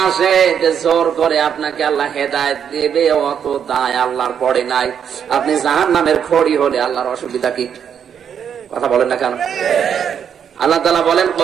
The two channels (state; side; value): quieter; left; 8.1 dB